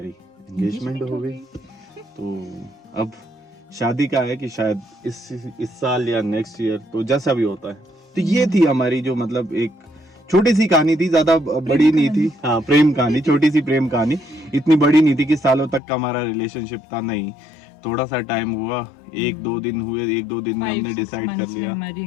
एंगेजमेंट हो गई। तो अब शादी का है कि शायद इस साल या नेक्स्ट ईयर, तो जैसा भी होता है। तो ये थी हमारी जो मतलब एक छोटी सी कहानी थी, ज्यादा बड़ी नहीं थी। हाँ, प्रेम कहानी, छोटी सी प्रेम कहानी, इतनी बड़ी नहीं थी कि सालों तक का हमारा रिलेशनशिप था, नहीं। थोड़ा सा टाइम हुआ, 1-2 दिन हुए, 1-2 दिन में हमने डिसाइड कर लिया, हमारी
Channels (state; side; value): drops out; right; at 15.8 s